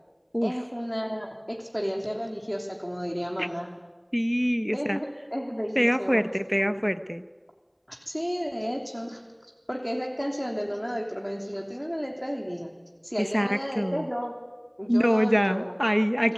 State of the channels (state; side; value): identical; both; correlation 1.00